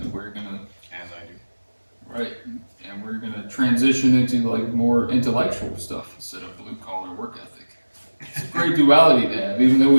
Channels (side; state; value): both; inverted; correlation -1.00